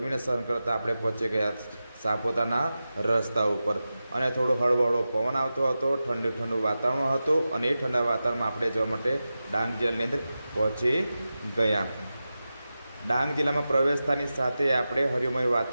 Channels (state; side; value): inverted; both; correlation -0.93